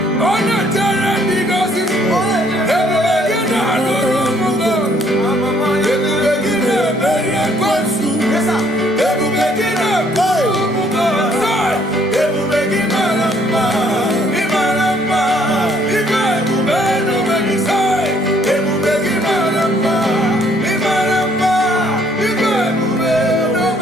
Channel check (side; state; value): both; normal; correlation 0.64